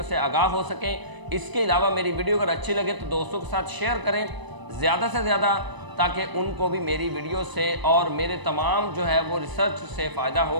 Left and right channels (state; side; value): late; left; 1.0 ms